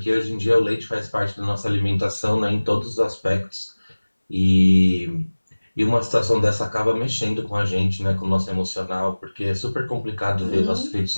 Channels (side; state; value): both; inverted; correlation -1.00